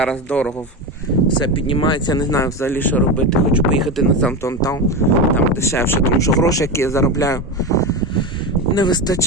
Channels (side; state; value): both; normal; correlation 0.19